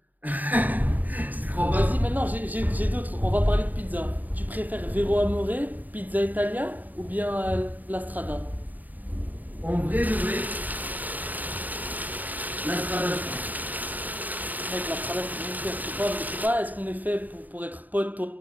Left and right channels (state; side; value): late; left; 0.083 ms